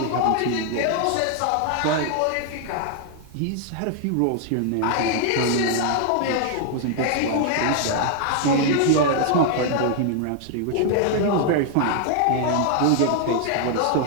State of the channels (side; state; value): both; different; correlation 0.00